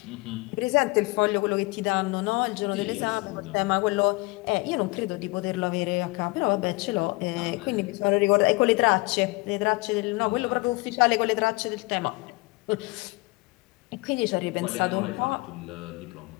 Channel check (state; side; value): quieter; right; 24.7 dB